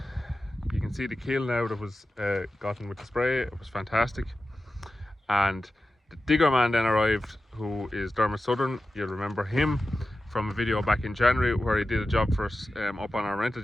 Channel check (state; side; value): normal; both; correlation 0.93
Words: You can see the kill now that was gotten with the spray. It was fantastic. And the digger man then arrived, who is Dermot Southern. You'll remember him from a video back in January where he did a job for us up on our rented